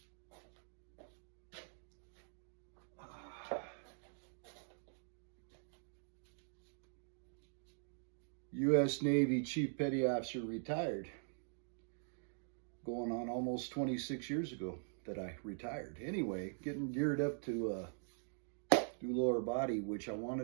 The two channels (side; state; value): left; silent; digital silence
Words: U.S. Navy Chief Petty Officer retired. Going on almost 26 years ago that I retired. Anyway, getting geared up to do lower body, which I